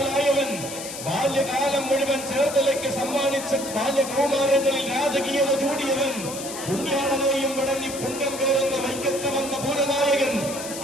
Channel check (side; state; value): left; noise; hiss, 9 dB below the sound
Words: ബാല്യകാലം മുഴുവൻ ചേർത്തലയ്ക്ക് സമ്മാനിച്ച ബാല്യകൗമാരങ്ങളിൽ രാജകീയത ചൂടിയവൻ, പുണ്യാളനെയും വടങ്ങി പുണ്യം പേരെന്ന വൈക്കത്ത് വന്ന പൂരനായകൻ,